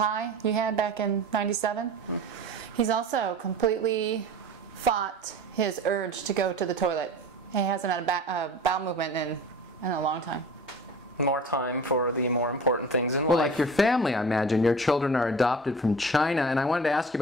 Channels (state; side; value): normal; both; correlation 0.39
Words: you had back in '97. He's also completely fought his urge to go to the toilet. He hasn't had a bowel movement in a long time. More time for the more important things in life. Well, like your family, I imagine. Your children are adopted from China, and I wanted to ask you